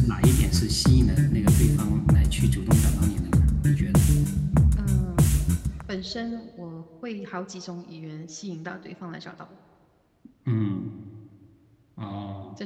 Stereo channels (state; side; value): identical; both; correlation 1.00